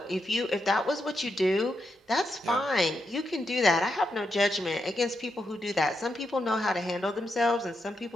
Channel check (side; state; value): both; normal; correlation 0.83